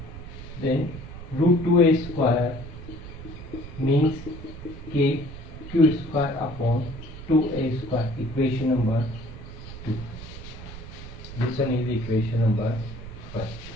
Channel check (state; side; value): noise; right; rumble, 12 dB below the sound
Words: Then root 2A square means K Q square upon 2A square. Equation number 2. This one is equation number 5.